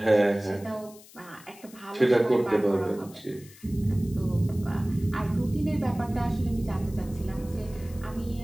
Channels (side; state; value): left; noise; hiss, 22 dB below the sound